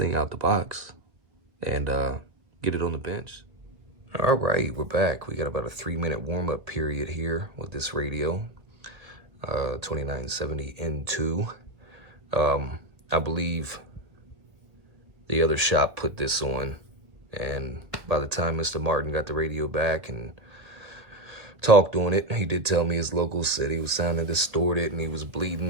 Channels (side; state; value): left; late; 1.6 ms